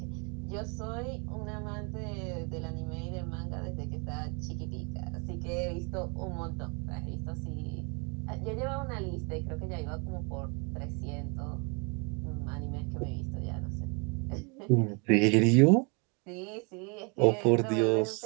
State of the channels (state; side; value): quieter; left; 32.8 dB